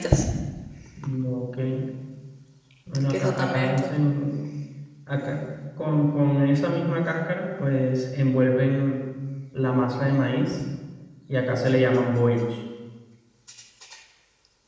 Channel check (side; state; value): both; identical; correlation 1.00